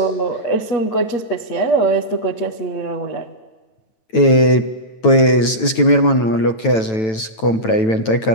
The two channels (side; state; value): right; late; 9.1 ms